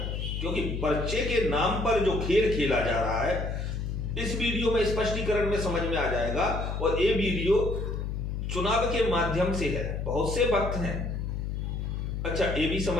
क्योंकि पर्चे के नाम पर जो खेल खेला जा रहा है इस वीडियो में स्पष्टीकरण में समझ में आ जाएगा। और ये वीडियो चुनाव के माध्यम से है, बहुत से भक्त हैं। अच्छा, ये भी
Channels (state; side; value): noise; left; hum, 3 dB below the sound